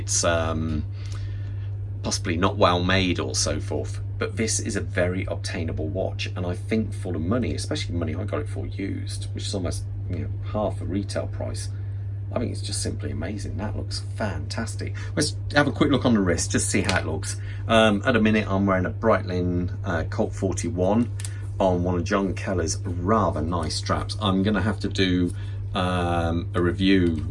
possibly not well made or so forth. But this is a very obtainable watch, and I think for the money, especially the money I got it for used, which is almost half the retail price, I think it's just simply amazing. That looks fantastic. Let's have a quick look on the wrist, just see how it looks. At the minute, I'm wearing a Breitling Colt 41 on one of John Keller's rather nice straps. I'm going to have to do a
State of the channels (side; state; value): both; identical; correlation 1.00